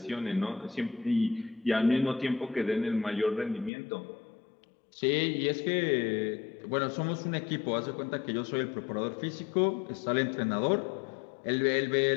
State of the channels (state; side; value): drops out; right; at 3.7 s